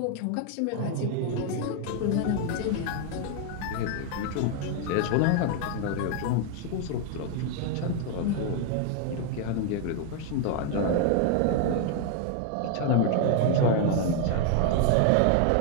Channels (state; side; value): different; both; correlation 0.00